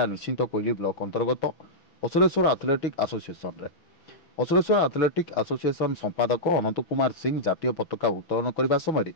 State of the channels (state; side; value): late; right; 6.0 ms